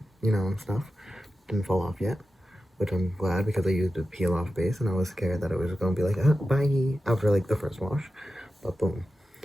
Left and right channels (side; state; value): both; normal; correlation 0.92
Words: and stuff. Didn't fall off yet, which I'm glad because I used a peel off base and I was scared that it was gonna be like, bye, after like the first wash. But boom.